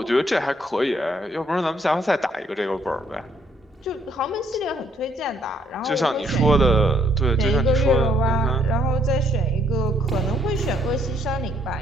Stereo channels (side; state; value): both; normal; correlation 0.69